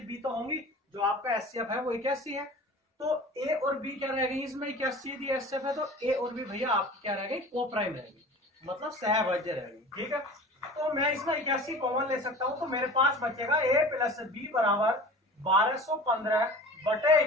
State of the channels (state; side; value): normal; both; correlation 0.39